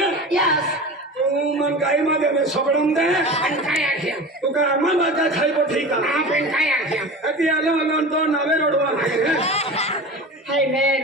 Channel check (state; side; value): normal; both; correlation 0.32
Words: Yes. तू मन काही मध्ये सोडून दे आणि काय आख्या तू का आम्हाला काय खायको ठीक आहे आपण काय आख्या ती आलो तो नवे रोडवा Hey man.